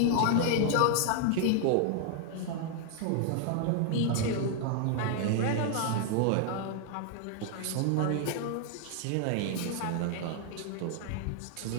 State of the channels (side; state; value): both; different; correlation 0.00